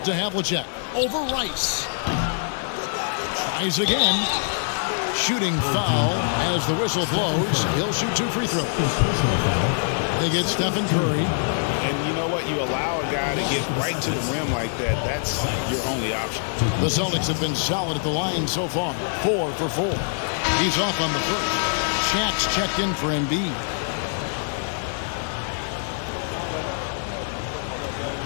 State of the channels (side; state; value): right; silent; digital silence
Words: to Havlicek. Over Rice. Tries again. Shooting foul as the whistle blows. He'll shoot 2 free throws. They get Stephen Curry. And you know what? You allow a guy to get right to the rim like that. That's your only option. The Celtics have been solid at the line so far. 4 for 4. He's off on the first. Shaq's checked in for Embiid.